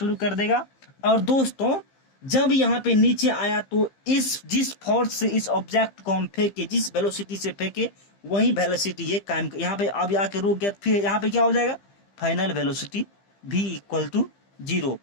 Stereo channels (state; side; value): late; right; 15 ms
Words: कर देगा। और दोस्तों जब यहाँ पे नीचे आया तो जिस फोर्स से इस ऑब्जेक्ट को हम फेंके, जिस वेलोसिटी से फेंके, वही वेलोसिटी ये कायम, यहाँ पे अब आके रुक गया, फिर यहाँ पे क्या हो जाएगा, final velocity v equal to 0।